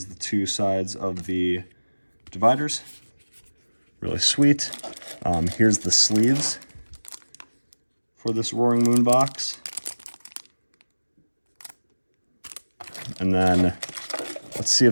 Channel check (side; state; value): both; inverted; correlation -1.00